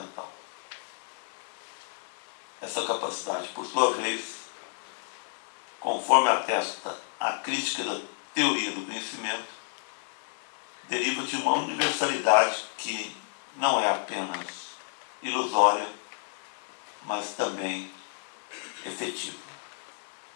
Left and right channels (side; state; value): right; silent; 57 dB below the other